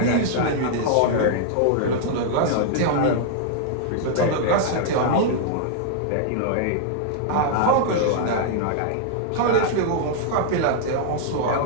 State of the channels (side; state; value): both; different; correlation -0.01